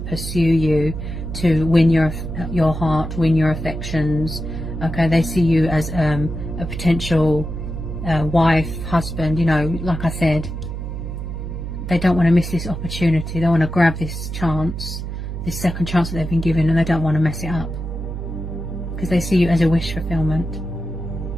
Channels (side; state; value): right; noise; hum, 6 dB below the sound